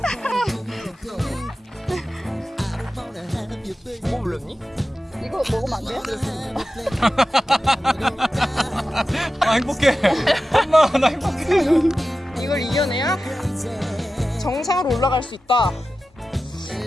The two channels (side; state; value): both; normal; correlation 0.93